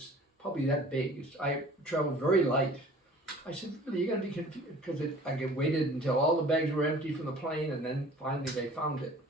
probably that big. I traveled very light. I said, really, you're going to be confused, because I waited until all the bags were empty from the plane, and then finally they found it.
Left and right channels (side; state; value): both; normal; correlation 0.48